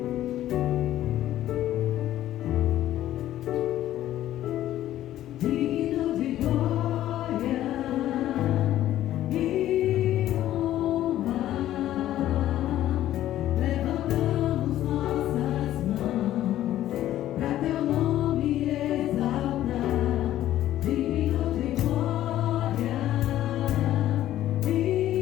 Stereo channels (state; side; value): quieter; right; 13.1 dB